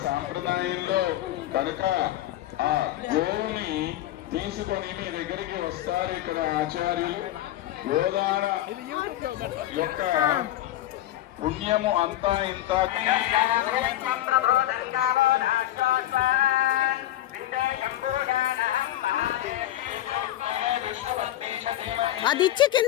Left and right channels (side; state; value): right; quieter; 13.9 dB